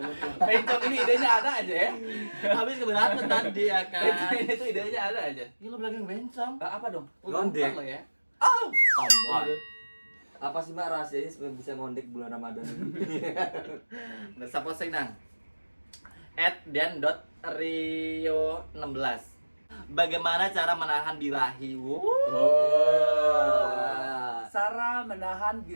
Pencok ini idenya ada aja ya. Habis keberatan tadi ya kan. Ini tuh idenya ada aja. Ini lo bilang bencong. Apa dong? Ngondek. Lo ya. Oh, Tombol. Apa sih Mak rahasianya supaya bisa ngondek bulan Ramadan ini? Dan siapa sih nang? @dan.rio16. Bagaimana cara menahan birahi? Sarah menahan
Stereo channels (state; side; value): inverted; both; correlation -1.00